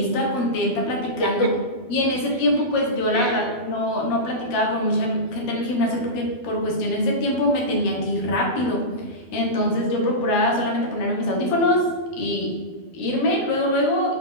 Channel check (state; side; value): late; right; 12 ms